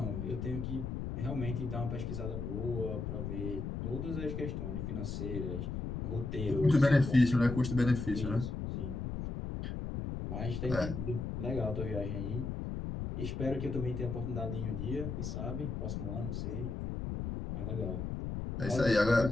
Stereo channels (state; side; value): noise; left; rumble, 4 dB below the sound